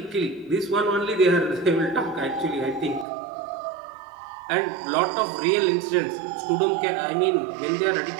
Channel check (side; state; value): left; drops out; at 3.1 s